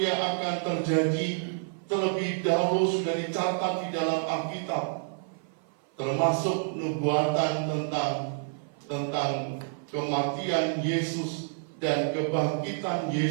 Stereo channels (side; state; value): left; silent; 56 dB below the other